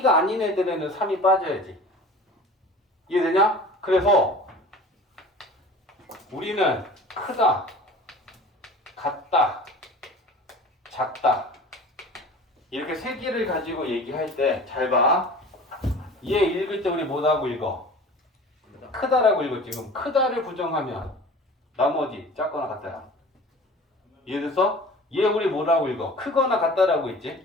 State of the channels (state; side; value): normal; both; correlation 0.41